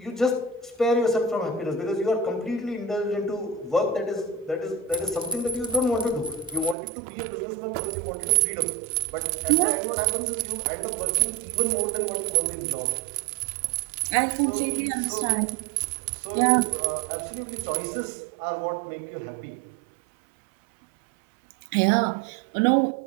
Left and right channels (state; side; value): drops out; left; at 6.8 s